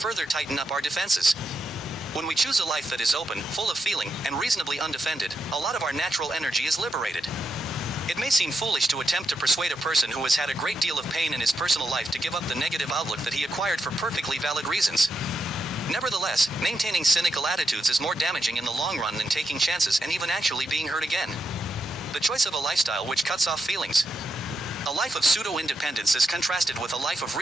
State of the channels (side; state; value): both; normal; correlation 0.84